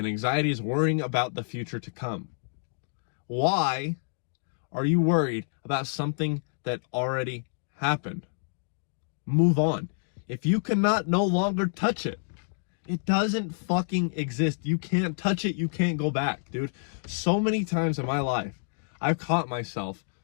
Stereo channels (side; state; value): right; silent; digital silence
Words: anxiety is worrying about the future to come. Why are you worried about something that already happened? Move on. If you cannot no longer touch it, it doesn't fucking exist. You can't touch it. You can't go back, dude. So many times in my life, I've caught myself